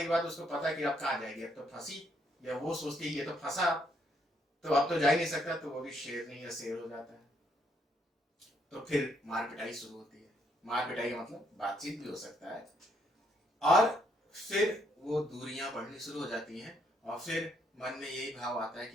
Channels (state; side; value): normal; both; correlation 0.71